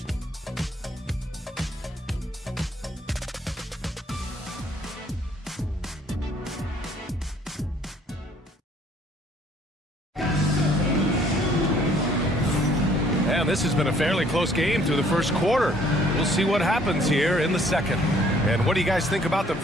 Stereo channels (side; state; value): both; normal; correlation 0.61